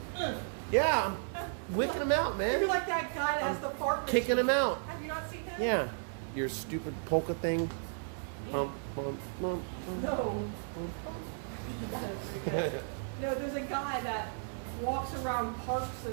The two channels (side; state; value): left; silent; digital silence